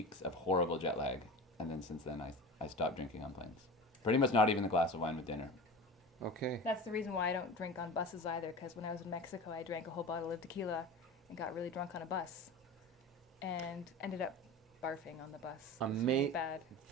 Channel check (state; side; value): normal; both; correlation 0.32